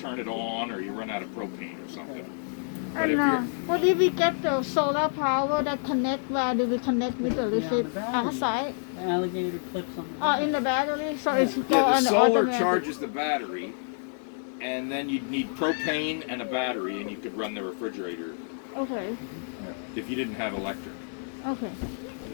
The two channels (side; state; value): right; silent; digital silence